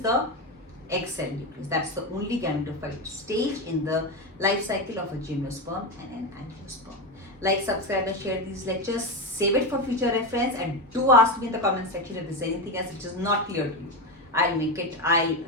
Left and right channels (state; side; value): normal; both; correlation 0.15